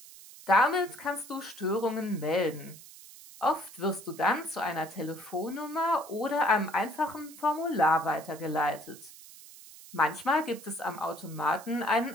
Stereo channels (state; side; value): noise; right; hiss, 18 dB below the sound